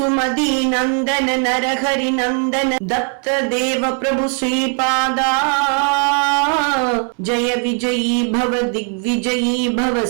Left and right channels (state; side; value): quieter; left; 39.9 dB